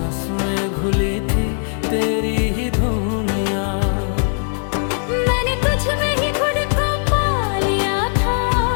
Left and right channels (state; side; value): silent; right; 60 dB below the other